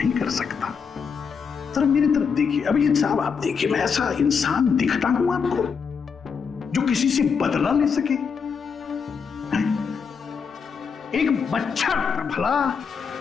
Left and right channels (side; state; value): right; quieter; 6.1 dB